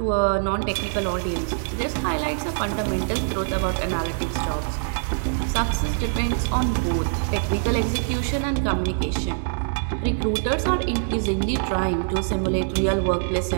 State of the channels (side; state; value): left; silent; digital silence